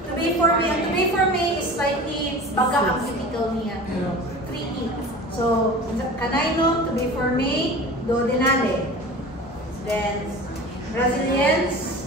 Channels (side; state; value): both; normal; correlation 0.37